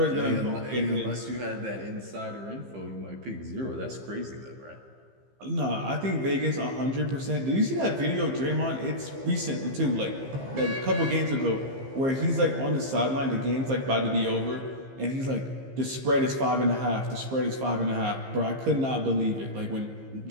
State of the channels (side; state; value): left; late; 15 ms